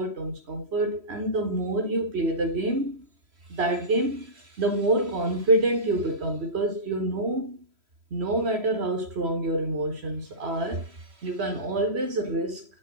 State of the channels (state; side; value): late; left; 3.0 ms